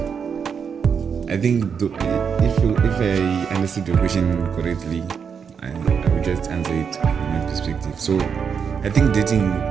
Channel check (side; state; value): left; quieter; 6.7 dB